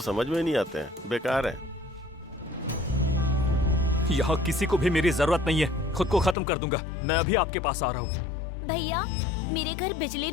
समझ में नहीं आते हैं, बेकार है। यहाँ किसी को भी मेरी जरूरत नहीं है। खुद को खत्म कर दूंगा। मैं अभी आपके पास आ रहा हूँ। भैया, मेरे घर बिजली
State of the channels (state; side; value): drops out; right; at 6.4 s